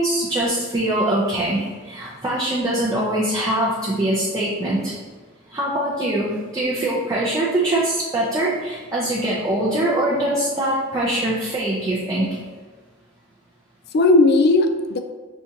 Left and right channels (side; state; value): both; normal; correlation 0.32